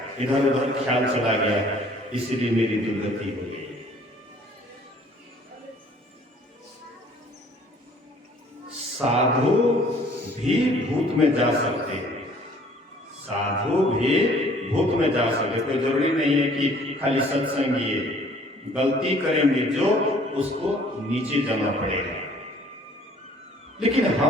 इधर उधर ख्याल चला गया, इसलिए मेरी दुर्गति हो गई। साधु भी भूत में जा सकते हैं, साधु भी भूत में जा सकते, कोई जरूरी नहीं है कि खाली सत्संग ये गलती करेंगे जो उसको नीचे जाना पड़ेगा। लेकिन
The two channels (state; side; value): normal; both; correlation 0.56